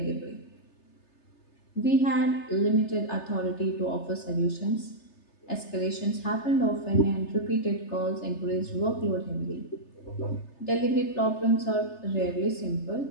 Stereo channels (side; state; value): right; late; 3.3 ms